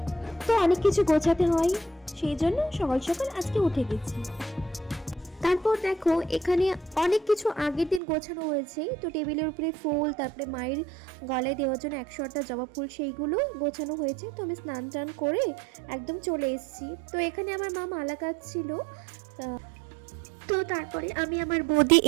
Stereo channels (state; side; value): drops out; left; at 8.0 s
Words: কিছু গোছাতে হয়, সেই জন্য সকাল সকাল আজকে উঠে গেছি। তারপর দেখো এখানে অনেক কিছু আগের দিন গোছানো হয়েছে। তো টেবিলের উপরে ফুল, তারপরে মায়ের গলায় দেওয়ার জন্য 108টা জবা ফুল, সেইগুলো গোছানো হয়েছে। তো আমি স্নান টান করে একদম চলে এসেছি। তো এখানে আমার মা মালা কাটছিল। তো তারপরে আমি আমার বৌদি